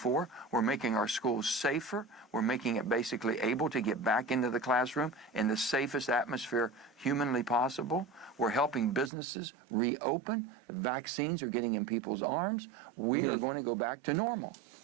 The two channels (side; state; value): left; drops out; at 9.1 s